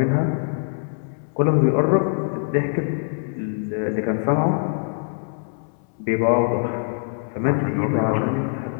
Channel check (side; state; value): right; silent; 62 dB below the other